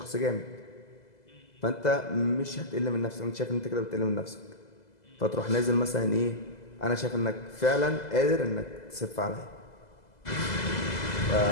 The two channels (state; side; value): late; right; 2.0 ms